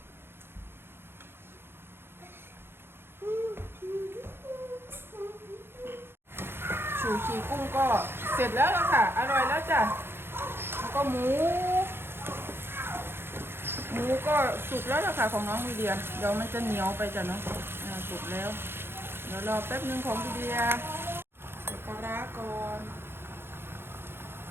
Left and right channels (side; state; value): left; late; 0.11 ms